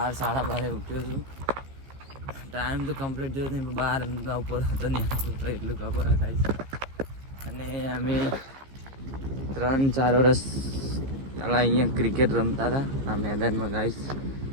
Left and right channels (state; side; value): late; left; 15 ms